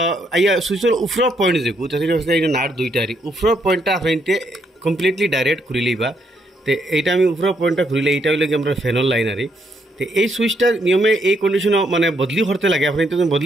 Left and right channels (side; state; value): both; normal; correlation 0.74